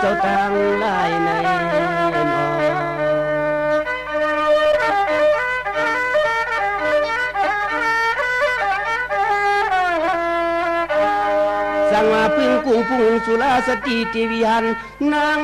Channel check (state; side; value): identical; both; correlation 1.00